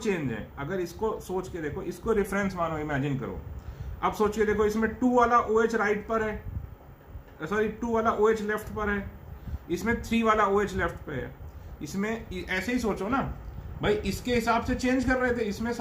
हैं। अगर इसको सोच के देखो, इसको रेफरेंस मानो, इमेजिन करो। अब सोच के देखो, इसमें 2 वाला OH राइट पर है, सॉरी 2 वाला OH लेफ्ट पर है, इसमें 3 वाला OH लेफ्ट पे है। इसमें ऐसे ही सोचो ना भाई, इसके हिसाब से चेंज कर रहे थे, इसमें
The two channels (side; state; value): both; identical; correlation 1.00